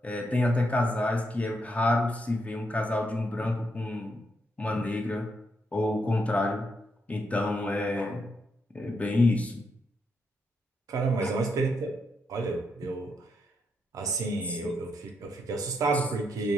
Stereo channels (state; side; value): normal; both; correlation 0.79